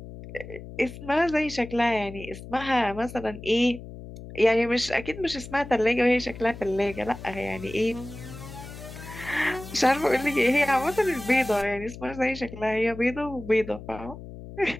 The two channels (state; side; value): noise; left; hum, 13 dB below the sound